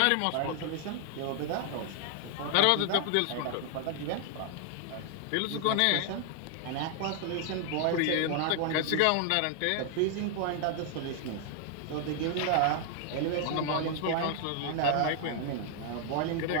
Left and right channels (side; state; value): both; different; correlation 0.00